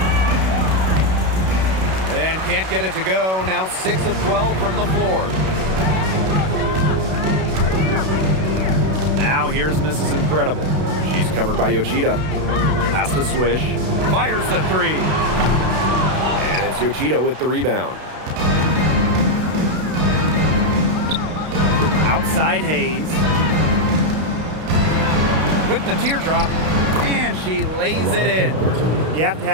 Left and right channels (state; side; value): late; left; 32 ms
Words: And can't get it to go. Now 6 of 12 from the floor. Now here's Mrs. Incredible. She's covered by Yoshida. Pass to Swish. Fires the three. And it's Yoshida with the rebound. Outside Hayes. With the teardrop. And she lays it in. You have to